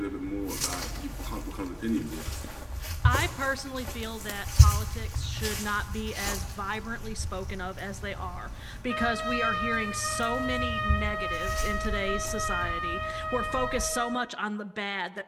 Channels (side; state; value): both; identical; correlation 1.00